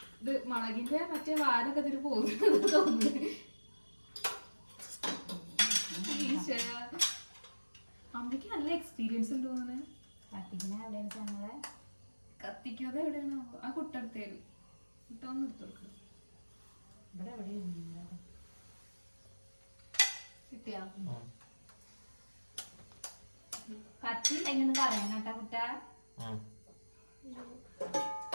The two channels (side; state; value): both; inverted; correlation -1.00